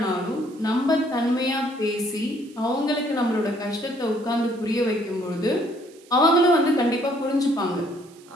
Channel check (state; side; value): noise; right; hiss, 26 dB below the sound